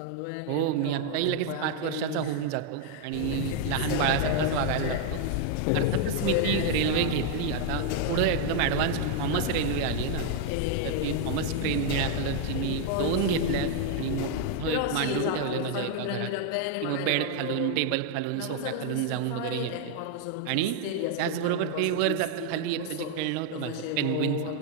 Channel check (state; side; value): different; both; correlation 0.00